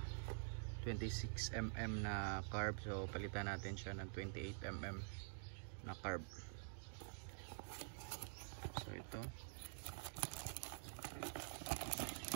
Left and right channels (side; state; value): left; silent; digital silence